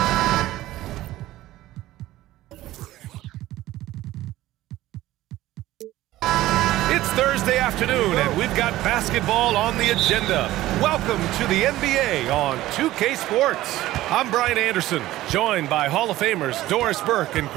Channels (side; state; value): left; quieter; 15.8 dB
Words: It's Thursday afternoon, and we've got basketball on the agenda. Welcome to the NBA on 2K Sports. I'm Brian Anderson, joined by Hall of Famers Doris Burke and